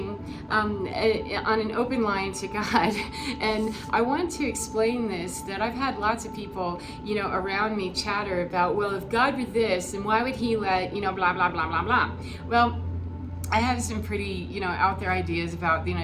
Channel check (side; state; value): both; identical; correlation 1.00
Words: on an open line to God. And I want to explain this, that I've had lots of people, around me chatter about, well, if God were this, then why would he let, blah, blah, blah, blah, blah. Well, I have some pretty, out there ideas about,